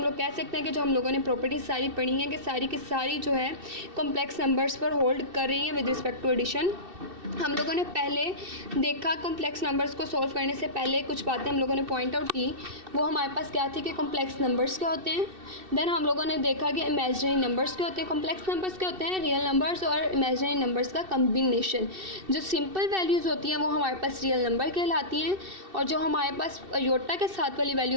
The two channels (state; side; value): late; left; 2.6 ms